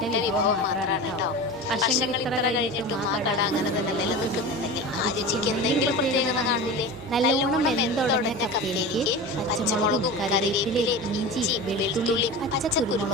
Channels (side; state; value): both; normal; correlation 0.30